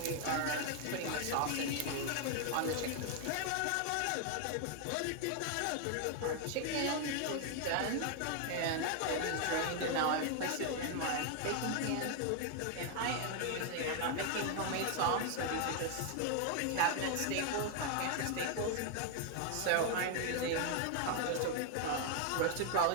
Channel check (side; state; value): both; different; correlation 0.00